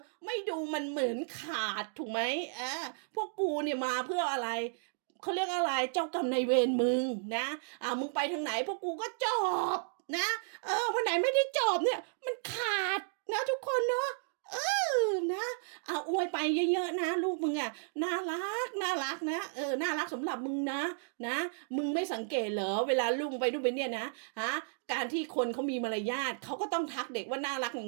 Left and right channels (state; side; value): silent; left; digital silence